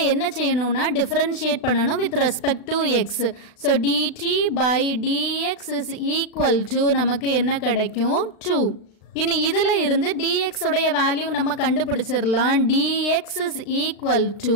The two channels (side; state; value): right; late; 36 ms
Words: என்ன செய்யணும்னா differentiate பண்ணணும் with respect to x. So dt by dx is equal to நமக்கு என்ன கிடைக்கும் 2. இனி இதுல இருந்து dx உடைய வேல்யூ நம்ம கண்டுபிடிச்சிரலாம். dx is equal